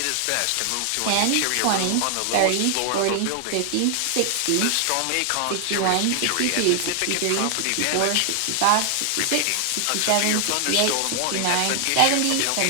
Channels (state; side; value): different; both; correlation 0.00